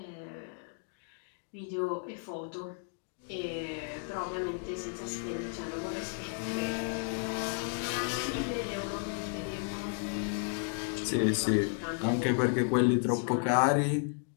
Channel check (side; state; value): right; silent; 56 dB below the other